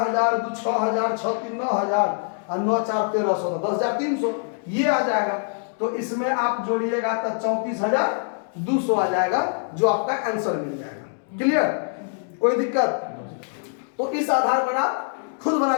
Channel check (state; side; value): silent; right; digital silence